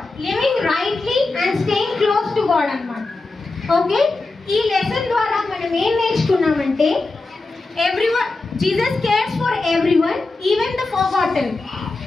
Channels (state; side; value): quieter; right; 3.4 dB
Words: living rightly and staying close to God అన్నమాట. Okay, ఈ లెసన్ ద్వారా మనం ఏం నేర్చుకున్నామంటే everyone, Jesus cares for everyone, even the forgotten.